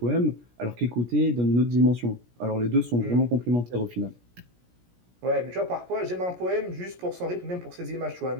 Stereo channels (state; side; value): late; left; 17 ms